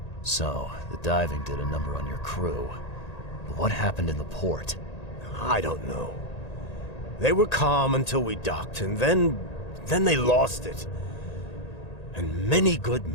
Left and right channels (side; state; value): right; late; 1.8 ms